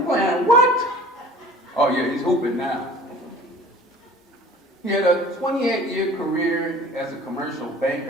playing what? Oh yeah, he's hooping now. He had a 28-year career as a commercial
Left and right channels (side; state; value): both; normal; correlation 0.46